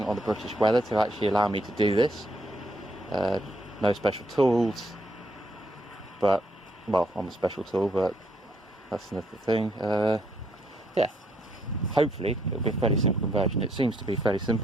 on the British weather to actually allow me to do this. No special tools, but, well, I'm a special tool, but that's another thing. Yeah, hopefully it'll be a fairly simple conversion. It seems to be fairly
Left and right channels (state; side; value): normal; both; correlation 0.72